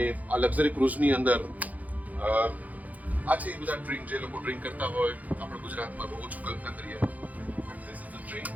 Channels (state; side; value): late; left; 0.077 ms